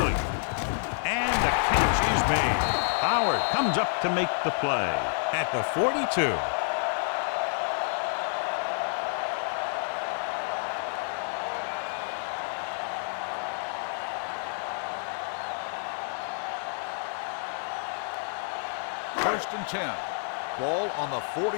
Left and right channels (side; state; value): right; silent; 59 dB below the other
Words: And the catch is made. Howard comes up to make the play at the 42. First and 10. Ball on the